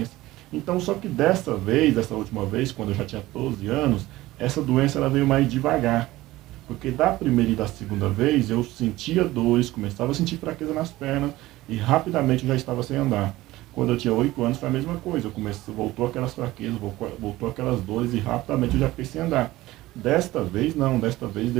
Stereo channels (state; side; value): quieter; left; 17.5 dB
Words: Então, só que dessa última vez, quando eu já tinha 12 anos, essa doença ela veio mais devagar. Porque da primeira e da segunda vez eu sentia dores, começava a sentir fraqueza nas pernas e rapidamente eu já estava sem andar. Quando eu tinha 8 anos foi a mesma coisa, voltou aquelas fraquezas, voltou aquelas dores e rapidamente eu já fiquei sem andar. Desta vez não, desta vez